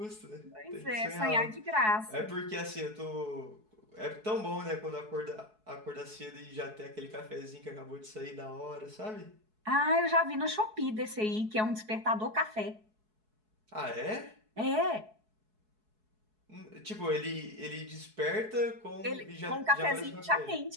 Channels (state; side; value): late; left; 4.7 ms